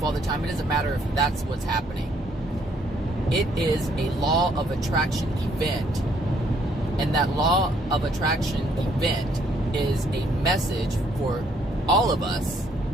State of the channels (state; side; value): normal; both; correlation 0.67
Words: all the time. It doesn't matter if that's what's happening. It is a law of attraction event. And that law of attraction event is a message for all of us